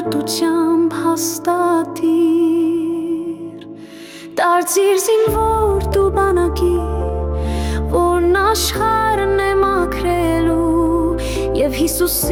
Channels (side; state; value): both; identical; correlation 1.00